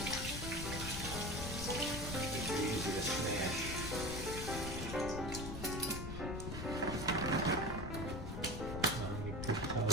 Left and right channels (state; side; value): noise; left; rumble, 5 dB below the sound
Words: They're easy to smash.